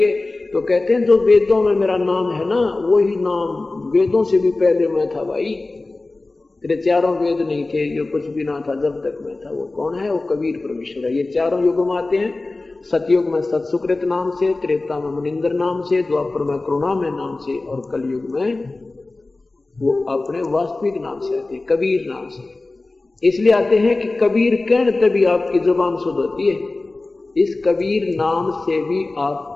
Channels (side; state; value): right; quieter; 3.2 dB